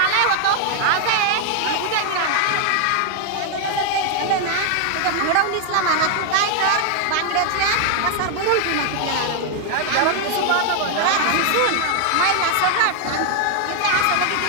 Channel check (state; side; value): different; both; correlation 0.00